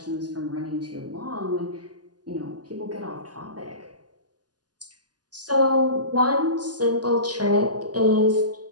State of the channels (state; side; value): late; left; 0.69 ms